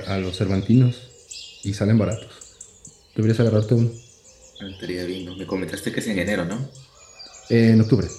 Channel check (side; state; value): both; identical; correlation 1.00